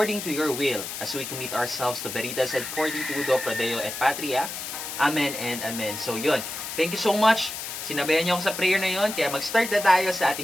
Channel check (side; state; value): left; noise; hiss, 7 dB below the sound